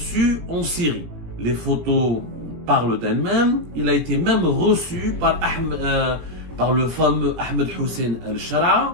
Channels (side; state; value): left; late; 17 ms